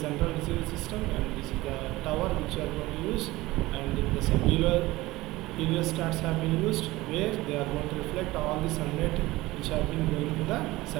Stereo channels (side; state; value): left; quieter; 19.1 dB